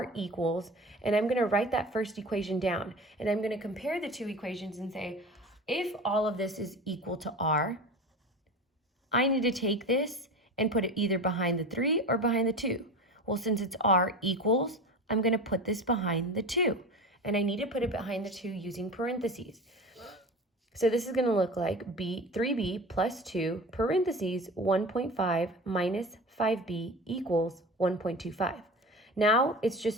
equals, and I'm going to write that first equation down, and I'm going to compare the two equations and say, if all of this is equal to r, I need to take this and put it either behind the 3 or behind the 2. Well, since it's r equals, I'm going to put this behind the 2, and I need to put it behind the 2 using parentheses. So this is going to look like 3b plus 2 parentheses 1.5 minus 5b equals 1.25. Now it's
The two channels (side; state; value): both; normal; correlation 0.32